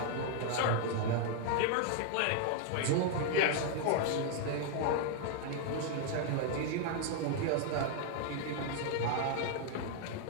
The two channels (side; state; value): both; different; correlation 0.00